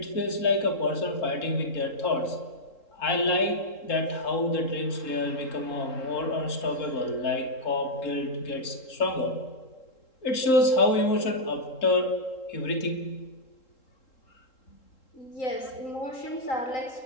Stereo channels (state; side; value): late; right; 3.7 ms